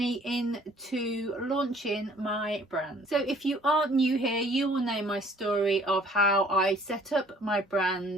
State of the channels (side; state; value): both; normal; correlation 0.56